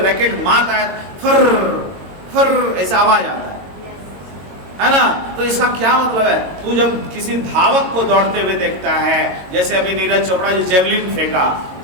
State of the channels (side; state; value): left; late; 22 ms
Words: मारता है, फर फर ऐसा आवाज आता है ना। तो इसका क्या मतलब है, तू जब किसी धावक को दौड़ते हुए देखता है, जैसे अभी नीरज चोपड़ा जो जेवलिन फेंका,